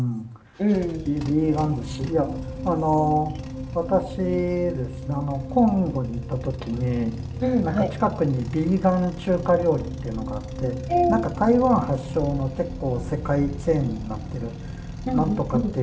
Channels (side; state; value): both; identical; correlation 1.00